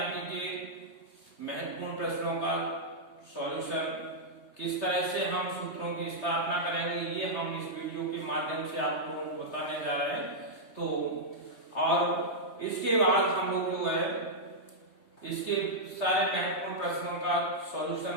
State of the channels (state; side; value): late; right; 3.3 ms